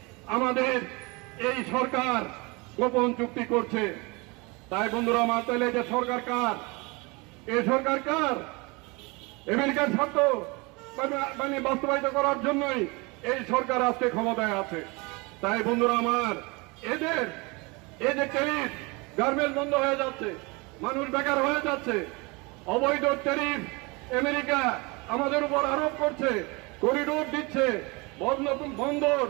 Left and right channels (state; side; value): quieter; left; 27.0 dB